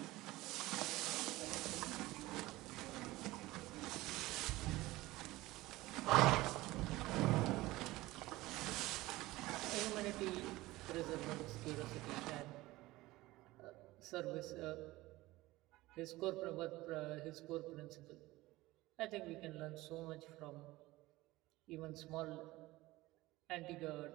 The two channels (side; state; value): left; quieter; 18.8 dB